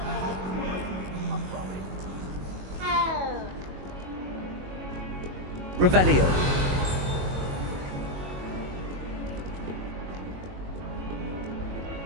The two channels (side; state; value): left; late; 22 ms